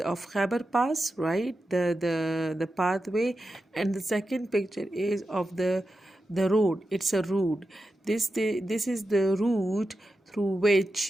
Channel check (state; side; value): normal; both; correlation 0.90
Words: of Khyber Pass, right? The pathway, and the second picture is of the road. It's a road. This is the route through